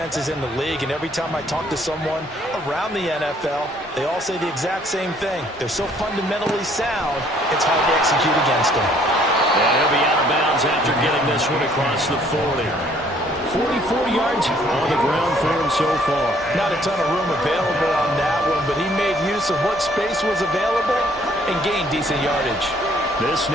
in the league, and every time I talk to someone around the NFL, they all say the exact same thing. They're so fundamentally sound, it's hard to execute against them. And he'll be out of bounds after getting this one across the 40. 44 yards on the ground for him so far. Not a ton of room available on that one, but he made use of what space was available and gained decent yardage. This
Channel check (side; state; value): both; normal; correlation 0.62